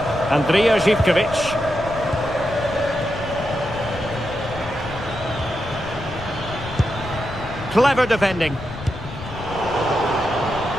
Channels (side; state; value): left; noise; rumble, 12 dB below the sound